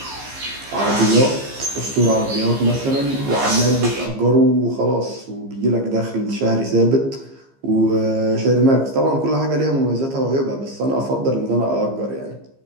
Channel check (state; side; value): late; left; 15 ms